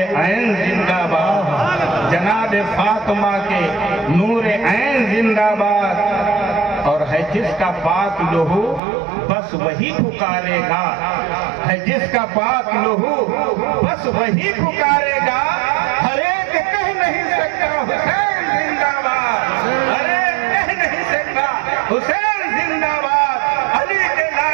زندہ باد، جناب فاطمہ کے نور عین زندہ باد۔ اور ہے جس کا پاک لہو بس وہی پکارے گا، ہے جس کا پاک لہو بس وہی پکارے گا، ہر ایک کہہ نہیں سکتا حسین زندہ باد، ہر ایک کہہ نہیں سکتا حسین زندہ باد۔ علی کے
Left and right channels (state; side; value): drops out; left; at 8.8 s